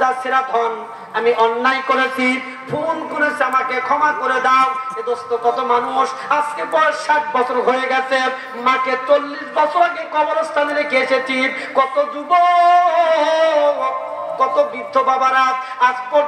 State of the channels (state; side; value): identical; both; correlation 1.00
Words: ছেঁড়া ধন, আমি অন্যায় করেছি, ভুল করেছি, আমাকে ক্ষমা করে দাও। এ দোস্ত, কত মানুষ আজকে বয়স 60 বছর হয়ে গেছে, মাকে 40 বছর আগে কবরস্থানে রেখে এসেছি। কত যুবক, কত বৃদ্ধ বাবারা আজ